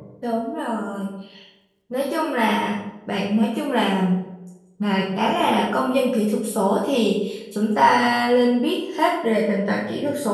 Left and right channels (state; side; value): identical; both; correlation 1.00